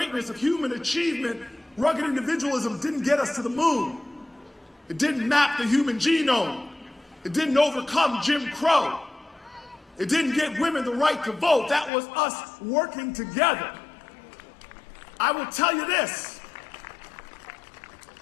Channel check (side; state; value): right; drops out; at 11.9 s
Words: of human achievement, rugged individualism didn't get us to the moon. It didn't map the human genome. It didn't overcome Jim Crow. It didn't get women the right to vote. That was us working together. I will tell you this.